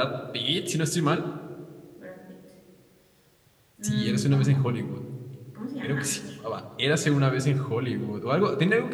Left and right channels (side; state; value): both; identical; correlation 1.00